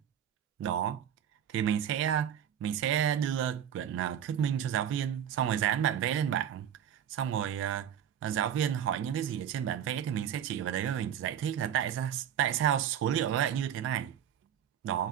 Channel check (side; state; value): left; quieter; 9.5 dB